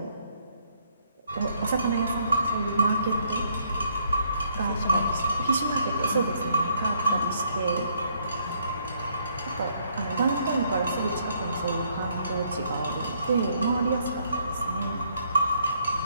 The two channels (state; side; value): inverted; both; correlation -0.69